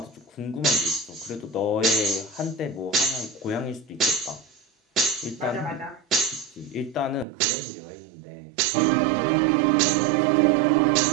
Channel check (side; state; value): left; drops out; at 7.2 s